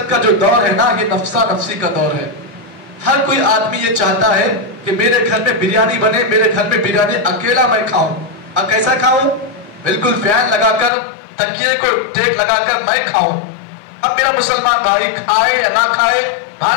کا جو دور ہے نا، یہ نفسا نفسی کا دور ہے. ہر کوئی آدمی یہ چاہتا ہے کہ میرے گھر میں بریانی بنے، میرے گھر میں بریانی اکیلا میں کھاؤں. اب کیسا کھاؤں؟ بالکل فین لگا کر، تکیے کو ٹیک لگا کر میں کھاؤں. اب میرا مسلمان بھائی کھائے یا نہ کھائے،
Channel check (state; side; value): drops out; right; at 10.9 s